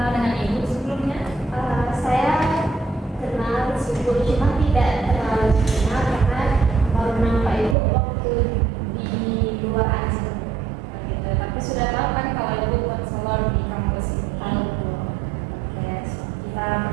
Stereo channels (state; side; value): drops out; left; at 7.8 s